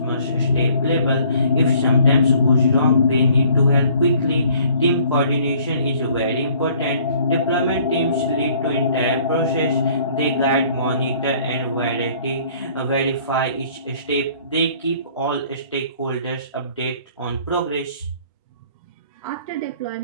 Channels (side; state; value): both; inverted; correlation -0.57